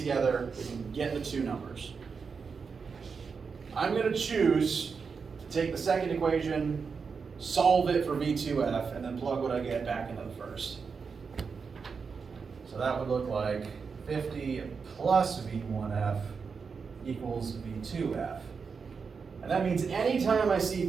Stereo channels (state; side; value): quieter; left; 5.5 dB